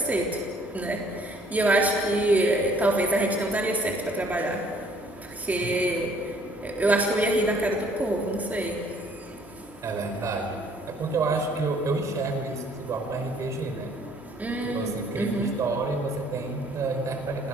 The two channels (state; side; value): normal; both; correlation 0.60